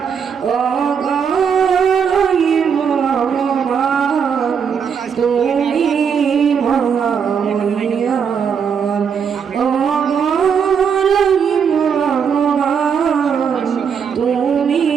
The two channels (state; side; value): quieter; left; 6.9 dB